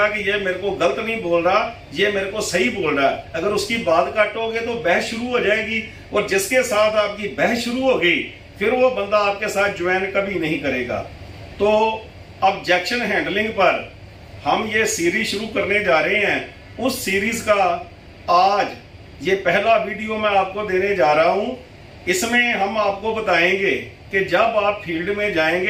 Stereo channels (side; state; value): both; identical; correlation 1.00